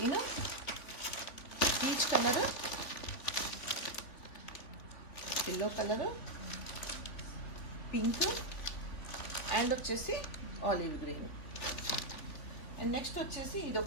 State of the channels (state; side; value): late; right; 3.5 ms